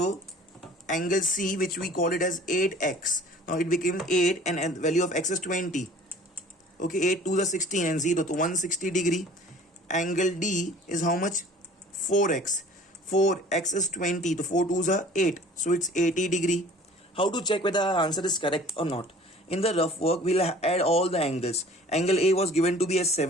angle C, which we call it as 8x, now it became 8 and value of x is 20. Okay, 8 to the 16 and 0 to 160 degree. Angle D is how much? 4x. 4x is 20. The 4 2s are 8. So it's 80 degree. How to check whether our answer is correct or not? In the rough work, we'll add all the angles. Angle A was given to be as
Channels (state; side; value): normal; both; correlation 0.48